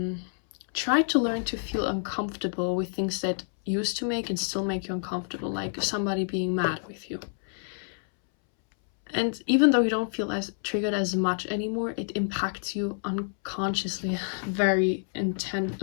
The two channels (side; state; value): right; silent; 59 dB below the other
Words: try to learn to feel uncomfortable with things that used to make and still make you uncomfortable, like somebody being mad with you. And even though you don't feel as triggered as much anymore, it impacts you unconsciously very